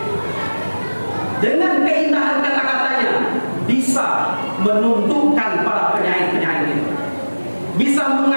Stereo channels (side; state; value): both; inverted; correlation -1.00